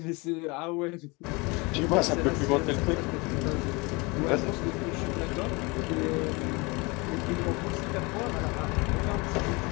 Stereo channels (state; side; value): quieter; right; 26.6 dB